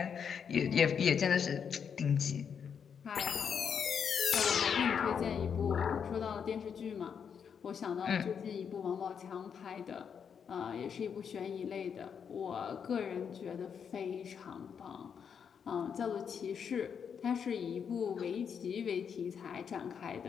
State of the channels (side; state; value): right; quieter; 7.2 dB